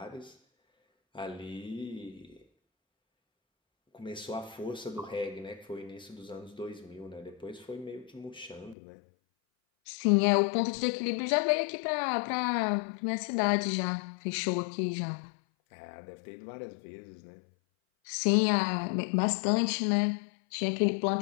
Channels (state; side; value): drops out; right; at 8.8 s